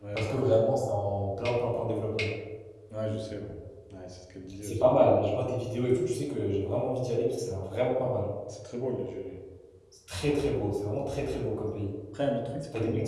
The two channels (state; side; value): identical; both; correlation 1.00